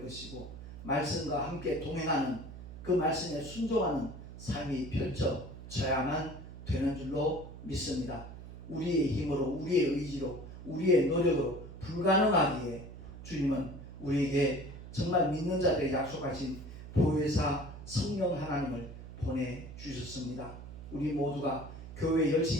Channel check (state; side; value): noise; right; hum, 13 dB below the sound